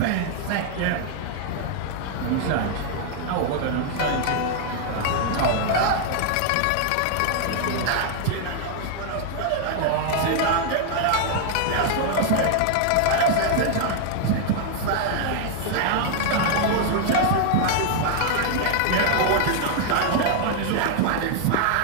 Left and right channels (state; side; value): different; both; correlation 0.00